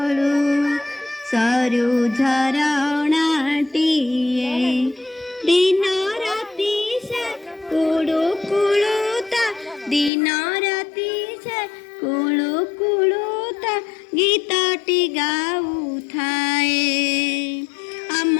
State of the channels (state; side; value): drops out; right; at 10.1 s